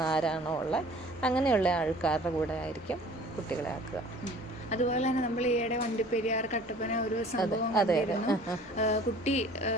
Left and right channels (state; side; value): normal; both; correlation 0.49